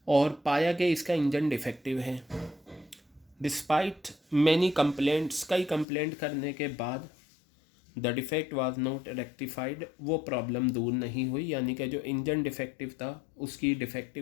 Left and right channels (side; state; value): right; drops out; at 5.9 s